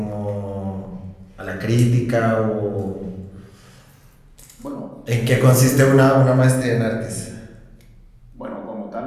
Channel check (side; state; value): both; identical; correlation 1.00